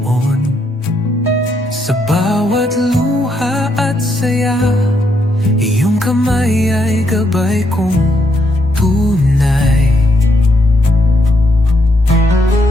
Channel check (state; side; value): normal; both; correlation 0.77